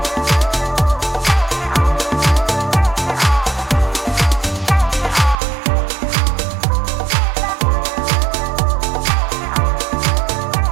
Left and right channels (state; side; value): drops out; left; at 5.4 s